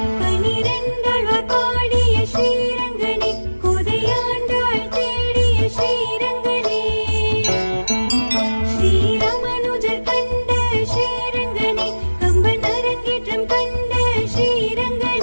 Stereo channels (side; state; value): both; inverted; correlation -1.00